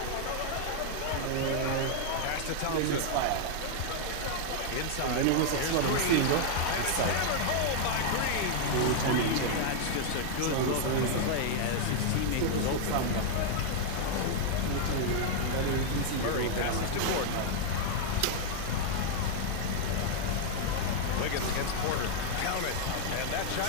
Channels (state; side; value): different; both; correlation 0.00